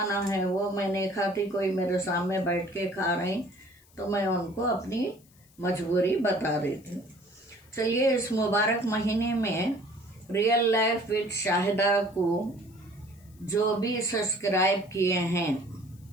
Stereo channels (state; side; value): noise; left; hiss, 30 dB below the sound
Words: है वो मैं नहीं खाती, कोई मेरे सामने बैठ के खा रहे तो मैं उनको अपनी मजबूरी बता देती हूँ। चलिए इस मुबारक महीने में रियल लाइफ विद शाहिदा को जो भी सब्सक्राइब किए हैं,